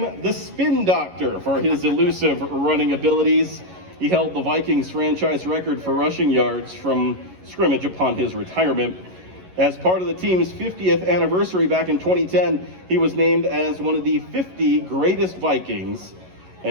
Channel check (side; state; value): left; late; 11 ms